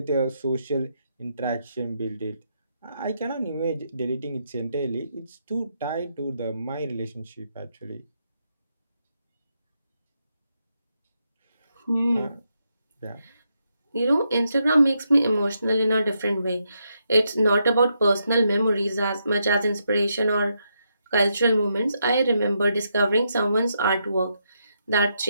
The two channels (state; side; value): inverted; both; correlation -0.80